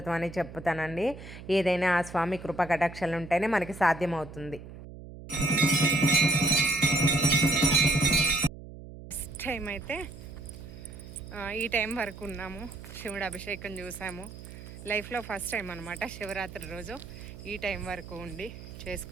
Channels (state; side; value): noise; right; hum, 14 dB below the sound